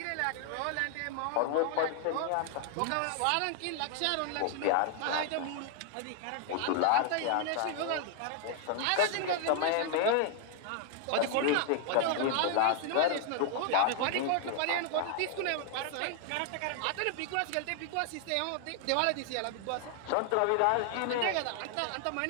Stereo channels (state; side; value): different; both; correlation 0.00